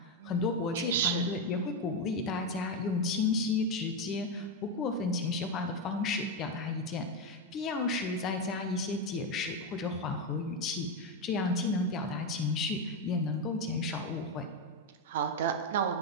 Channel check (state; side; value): normal; both; correlation 0.08